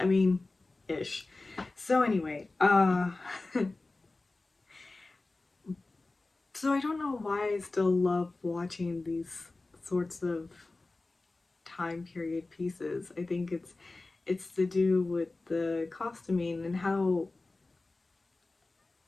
mean, ish. So anyway, so I don't know why I still love watching these sorts of time period pieces. I think it's to do with the costuming and how,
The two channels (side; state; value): right; quieter; 3.3 dB